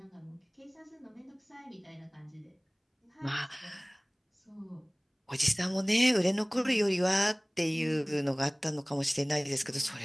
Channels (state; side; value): identical; both; correlation 1.00